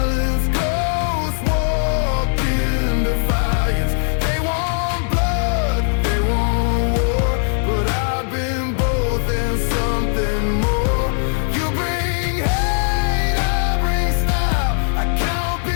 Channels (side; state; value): right; silent; digital silence